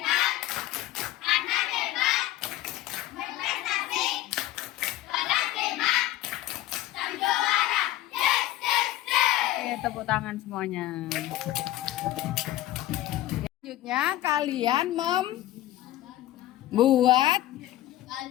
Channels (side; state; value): right; quieter; 14.9 dB